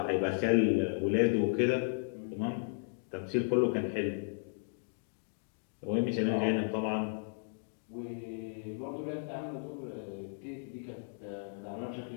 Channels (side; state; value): right; silent; digital silence